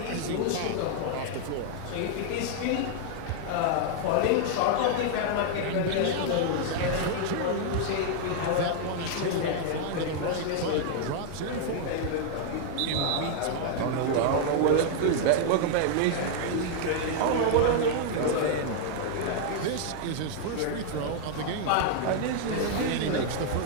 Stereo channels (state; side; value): different; both; correlation 0.00